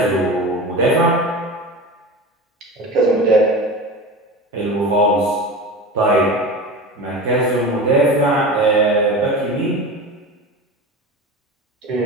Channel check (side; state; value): both; normal; correlation 0.30